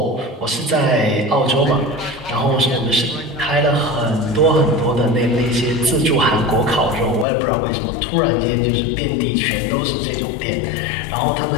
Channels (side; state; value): right; drops out; at 7.2 s